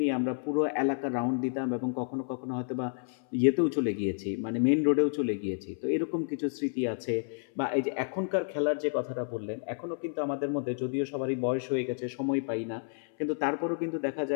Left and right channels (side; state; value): right; silent; 58 dB below the other